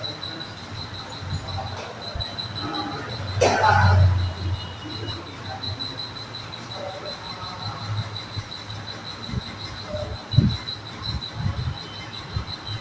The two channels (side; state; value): both; identical; correlation 1.00